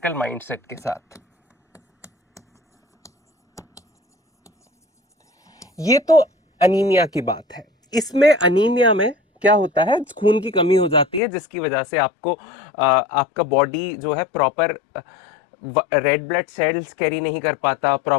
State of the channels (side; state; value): right; drops out; at 11.2 s